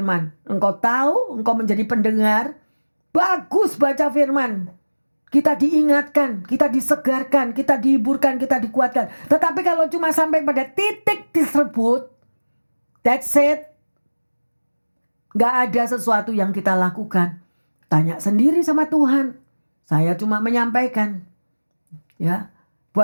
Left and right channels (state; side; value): inverted; both; correlation -1.00